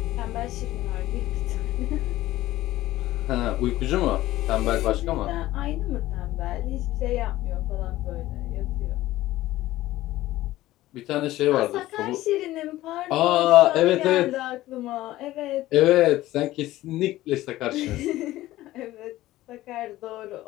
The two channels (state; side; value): quieter; right; 16.0 dB